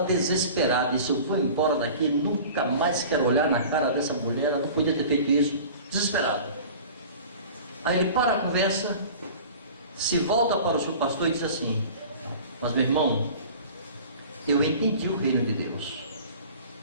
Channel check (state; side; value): inverted; both; correlation -0.41